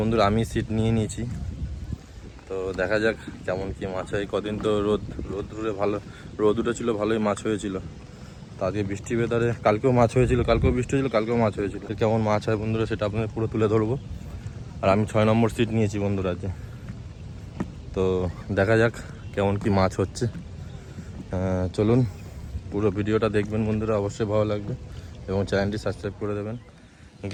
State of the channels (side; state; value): both; identical; correlation 1.00